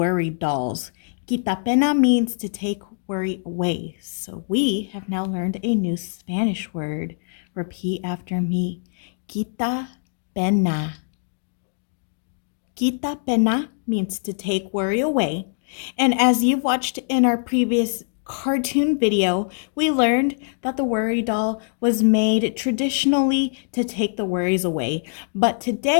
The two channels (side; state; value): right; silent; digital silence